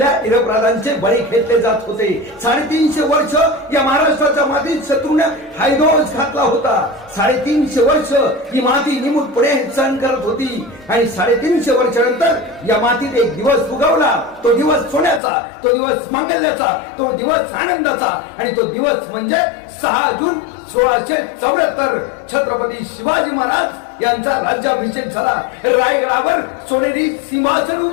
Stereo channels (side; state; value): right; drops out; at 15.2 s